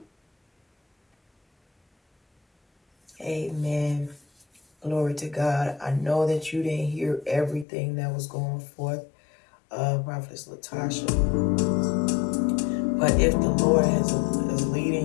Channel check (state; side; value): drops out; right; at 7.7 s